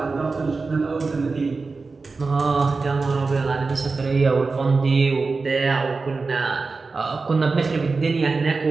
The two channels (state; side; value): quieter; left; 4.1 dB